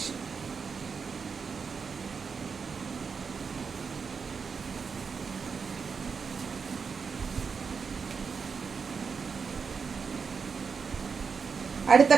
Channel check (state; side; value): quieter; left; 5.6 dB